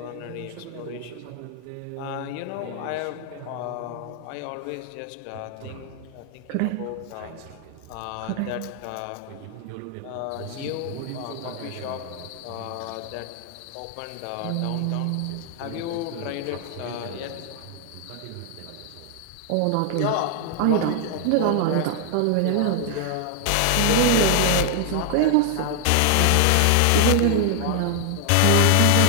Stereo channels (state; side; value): different; both; correlation 0.00